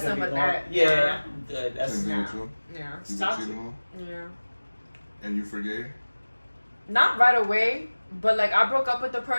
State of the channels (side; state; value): both; inverted; correlation -1.00